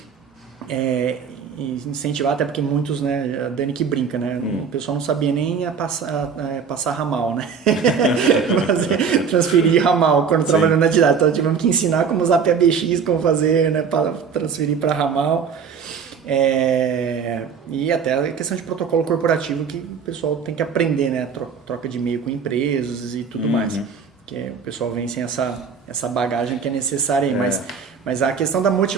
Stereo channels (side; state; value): left; quieter; 6.2 dB